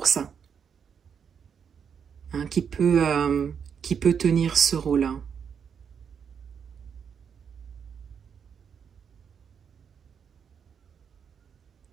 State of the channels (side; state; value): left; quieter; 7.2 dB